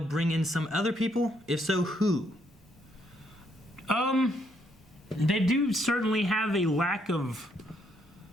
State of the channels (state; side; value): normal; both; correlation 0.72